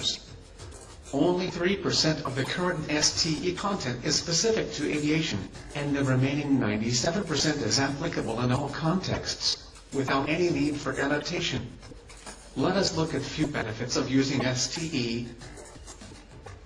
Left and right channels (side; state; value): both; identical; correlation 1.00